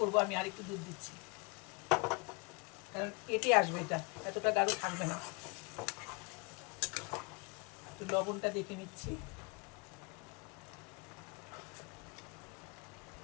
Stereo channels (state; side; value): quieter; right; 31.0 dB